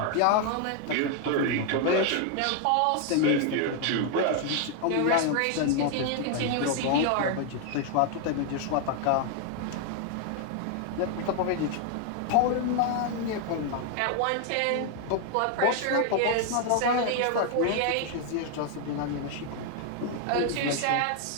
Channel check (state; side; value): different; both; correlation 0.00